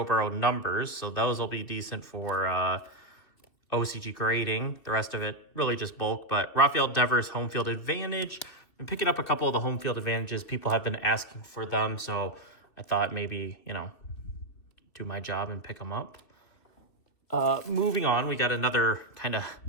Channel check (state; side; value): late; right; 2.9 ms